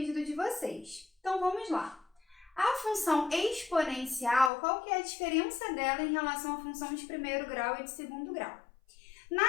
de vocês. Então, vamos lá. A função exponencial, qual que é a diferença dela em relação à função de primeiro grau e de segundo grau?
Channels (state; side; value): drops out; right; at 4.5 s